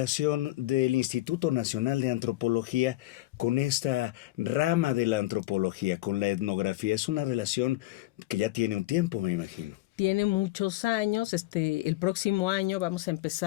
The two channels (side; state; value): right; quieter; 17.3 dB